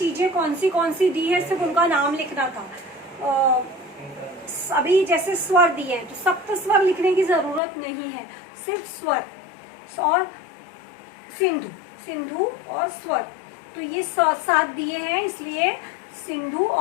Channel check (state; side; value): drops out; right; at 7.6 s